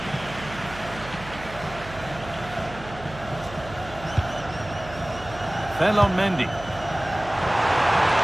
Fell on Mendy.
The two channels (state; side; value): noise; right; hum, 15 dB below the sound